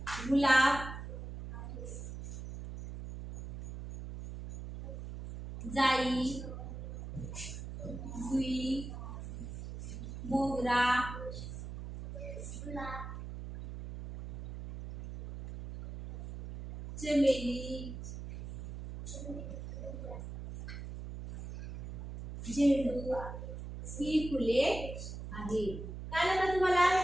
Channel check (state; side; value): noise; right; hum, 9 dB below the sound